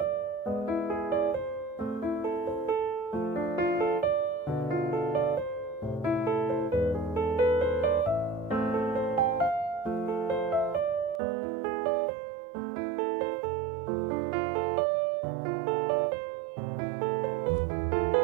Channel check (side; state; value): left; drops out; at 11.2 s